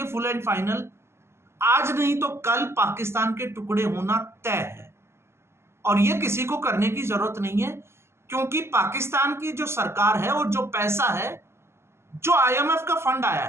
फुल एंड फाइनल, आज नहीं तो कल पाकिस्तान के टुकड़े होना तय है। और ये किसी को करने की जरूरत नहीं है, क्योंकि पाकिस्तान की जो सरकार है और जो पैसा है, जो आईएमएफ का फंड आया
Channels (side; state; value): left; late; 0.12 ms